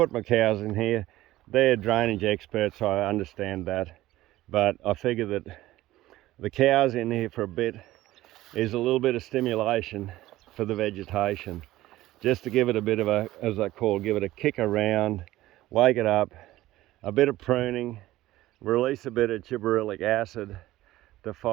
my cows in here. They're drainage experts, so I understand that, but I figure that the cows in here for a bit is a little bit of stimulation for the vegetation, just to give it a bit of a, as I call, give it a kick around, wake it up, a bit of pruning, release a bit of gibberellic acid to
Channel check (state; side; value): quieter; left; 16.1 dB